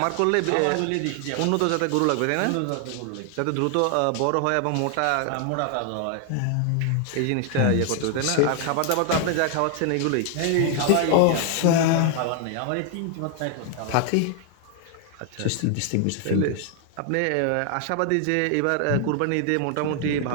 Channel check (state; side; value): different; both; correlation 0.00